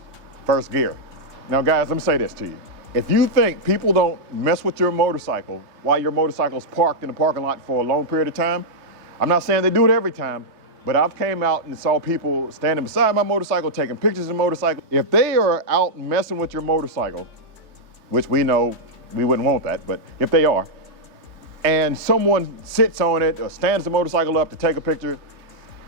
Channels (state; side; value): late; left; 3.2 ms